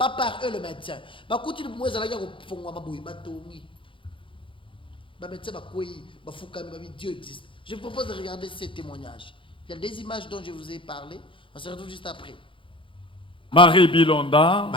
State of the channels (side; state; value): right; late; 0.25 ms